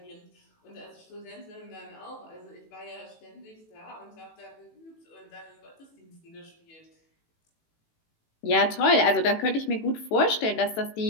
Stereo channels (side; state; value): right; late; 18 ms